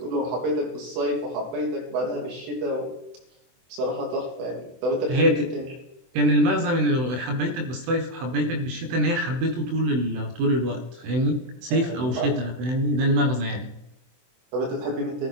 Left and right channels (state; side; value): late; left; 24 ms